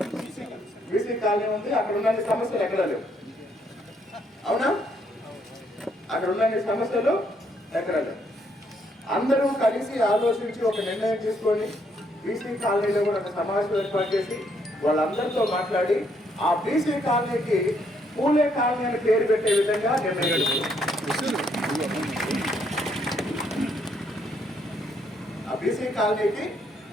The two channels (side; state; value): both; normal; correlation 0.72